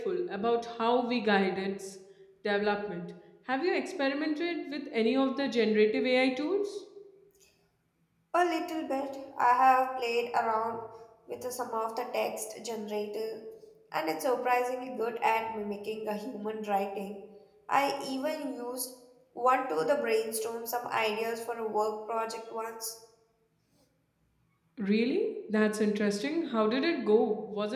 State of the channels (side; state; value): both; identical; correlation 1.00